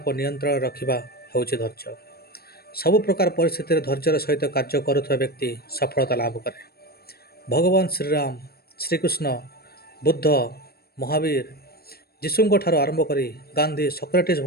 नियंत्रण रखा हूँ धैर्य। सबु प्रकार परिस्थिति धैर्यर सहित कार्य करुवा व्यक्ति सफलता लाभ करे। भगवान श्रीराम, श्रीकृष्ण, बुद्ध, महावीर, यीशुଙ୍କ ଠାରୁ आरंभ करी गांधी, सक्रेटिस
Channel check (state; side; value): late; right; 0.45 ms